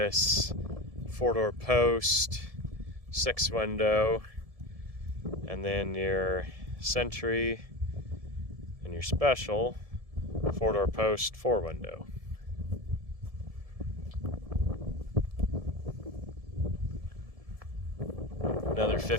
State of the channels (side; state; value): left; late; 1.7 ms